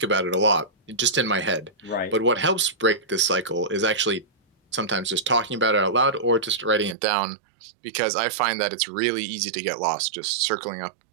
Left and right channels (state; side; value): drops out; left; at 7.0 s